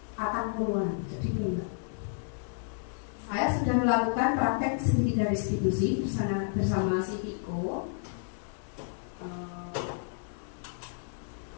Atang-Puluhan, jadi enggak. Saya sudah melakukan praktek segitiga restitusi bersama si Viko.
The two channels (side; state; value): right; silent; 57 dB below the other